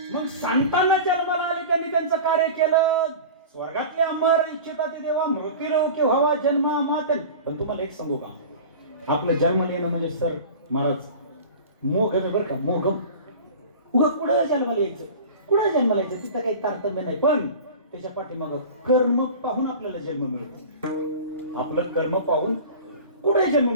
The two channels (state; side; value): inverted; both; correlation -0.36